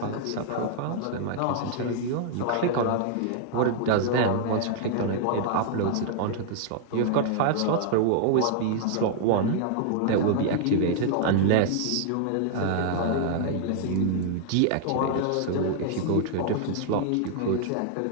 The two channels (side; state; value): both; different; correlation -0.01